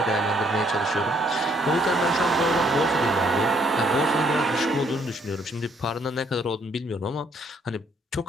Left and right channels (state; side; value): normal; both; correlation 0.67